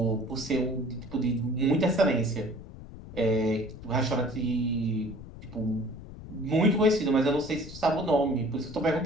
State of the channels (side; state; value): left; noise; rumble, 14 dB below the sound